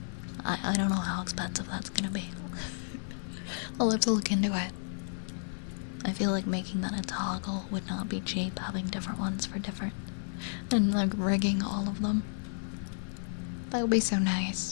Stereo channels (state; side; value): silent; right; digital silence